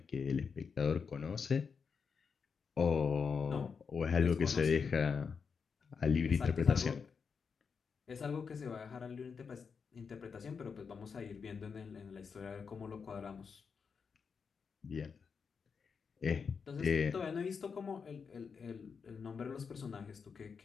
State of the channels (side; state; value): right; quieter; 5.8 dB